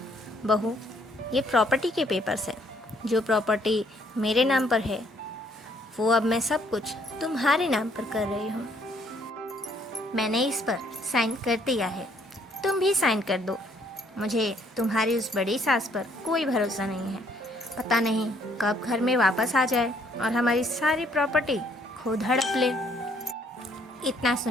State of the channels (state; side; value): normal; both; correlation 0.66